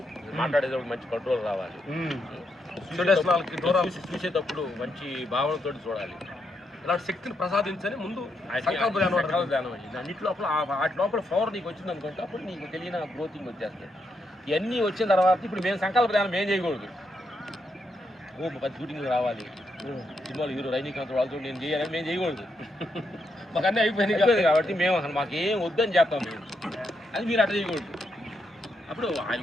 మాట్లాడేటప్పుడు మంచి కంట్రోల్ రావాలి, చూసేటప్పుడు మంచి భావనతో చూడాలి. ఇలాంటి శక్తిని ప్రసాదించని ముందు సంకల్ప ధ్యానం అయింది. అన్నిటి లోపల వాటి లోపల పవర్ నీకు వచ్చింది అనుకుంటే అప్పుడు నీకు తెలియని గ్రోతింగ్ వచ్చేస్తాయి. ఇవన్నీ వచ్చిన తర్వాత ఇప్పుడు మేము సంకల్ప ధ్యానం ఏం చేయకూడదు, 10 షూటింగ్లు రావాలి, సినిమాలు హీరో రజనీకాంత్ వాళ్ళతో నేను చేయాలని మేము చేయకూడదు. మాకు అన్నీ అయిపోయినాయి కాబట్టి మేము అసలు మాకు ఏం వద్దని చేస్తాం మేము, అది మీరు అట్లా చేయకూడదు. అప్పుడు ఆయన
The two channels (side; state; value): both; normal; correlation 0.80